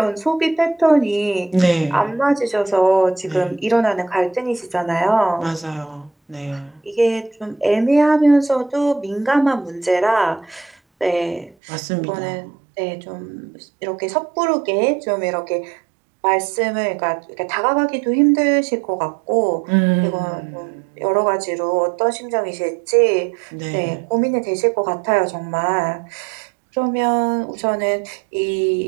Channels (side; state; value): left; drops out; at 11.6 s